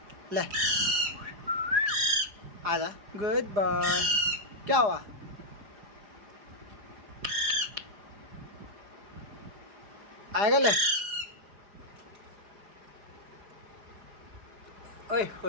ले आजा, गुड बॉय। क्या हुआ? आएगा ले, ओए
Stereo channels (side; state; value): left; late; 4.9 ms